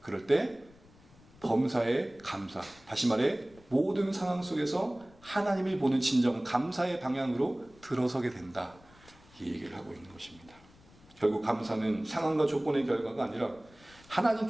그럴 때 범사의 감사, 다시 말해 모든 상황 속에서 하나님을 보는 진정 감사의 방향으로 들어서게 된다, 이 얘기를 하고 있는 것입니다. 결국 감사는 상황과 조건의 결과가 아니라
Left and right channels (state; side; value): noise; left; rumble, 26 dB below the sound